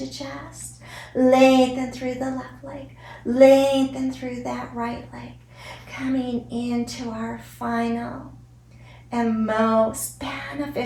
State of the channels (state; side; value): identical; both; correlation 1.00